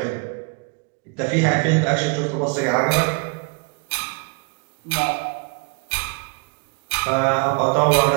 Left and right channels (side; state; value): left; quieter; 33.2 dB